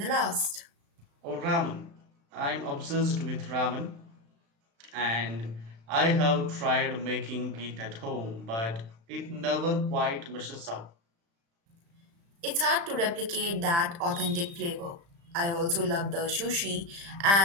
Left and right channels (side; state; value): left; late; 35 ms